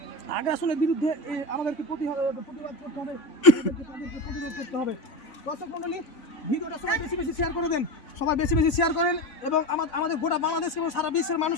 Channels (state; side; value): late; right; 3.5 ms